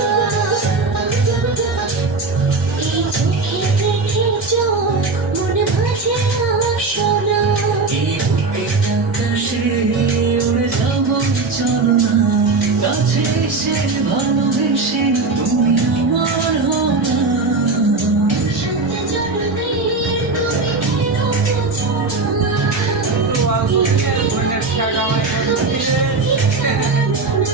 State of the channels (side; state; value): left; quieter; 3.8 dB